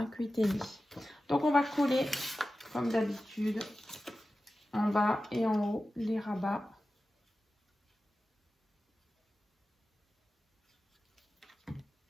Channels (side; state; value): both; normal; correlation 0.94